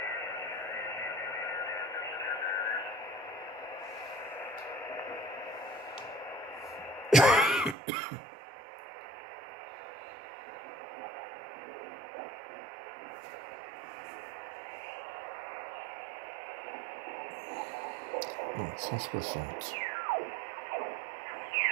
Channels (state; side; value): drops out; left; at 7.8 s